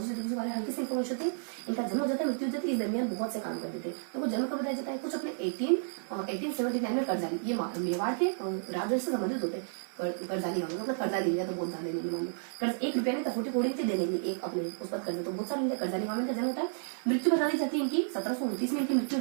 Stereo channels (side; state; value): left; silent; digital silence